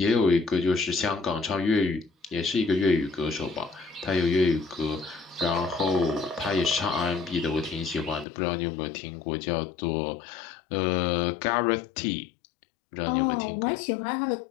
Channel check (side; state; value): right; drops out; at 8.2 s